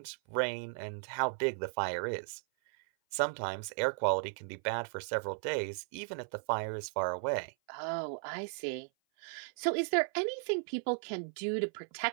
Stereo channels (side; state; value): left; silent; 54 dB below the other